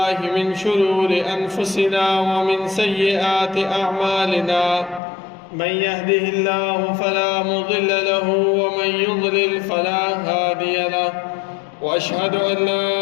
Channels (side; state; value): right; drops out; at 5.0 s